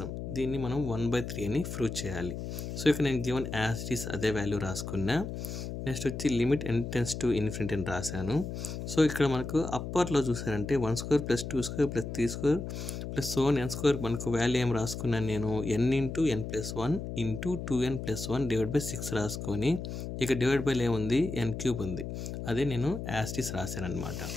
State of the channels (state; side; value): noise; left; hum, 6 dB below the sound